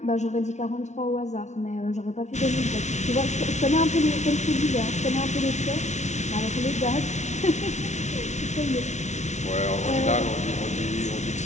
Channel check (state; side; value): late; right; 0.33 ms